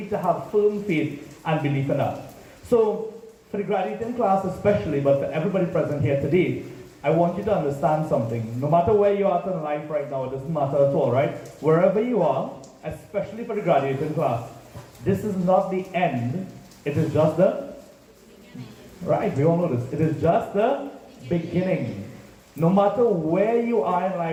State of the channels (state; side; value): identical; both; correlation 1.00